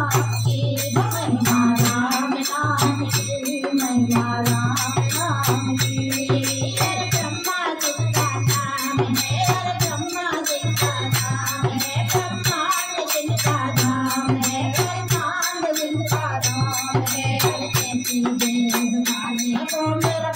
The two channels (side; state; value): both; identical; correlation 1.00